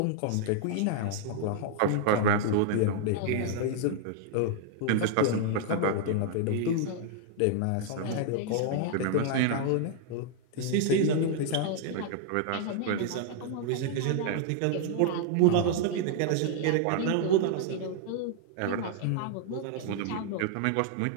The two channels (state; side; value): different; both; correlation -0.01